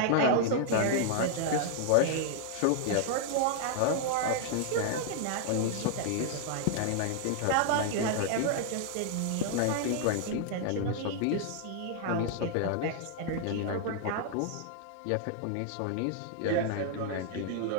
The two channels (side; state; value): both; different; correlation 0.00